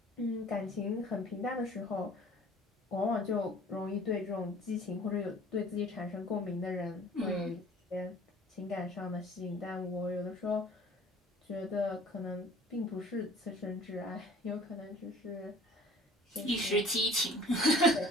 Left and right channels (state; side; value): normal; both; correlation 0.50